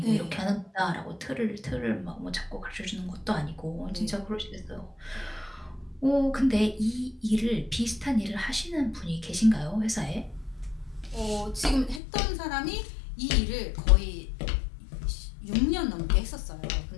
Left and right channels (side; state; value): right; drops out; at 12.0 s